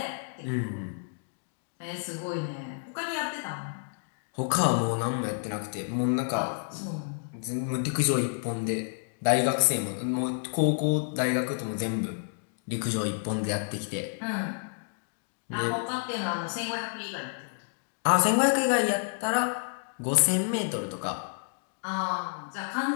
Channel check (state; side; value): silent; right; digital silence